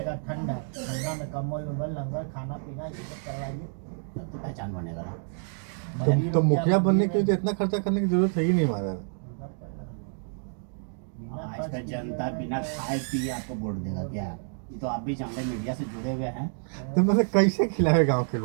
ठंडा, ठंडा में कम्बल उम्बल लंगर खाना पीना ये सब करवाइए। तब तो पहचान बनेगा ना। तो मुखिया बनने के लिए तो इतना खर्चा करने की जरूरत है ही नहीं हमारा। आज का जनता बिना खाए पिए आपको वोट देगा क्या? ये तो आप भी जानते हैं, मीडिया से जुड़े हुए हैं। तो मतलब कैसे खिलाए गांव के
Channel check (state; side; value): silent; left; 59 dB below the other